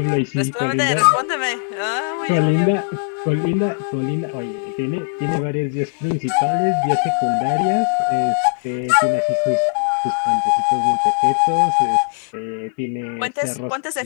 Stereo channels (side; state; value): right; silent; 65 dB below the other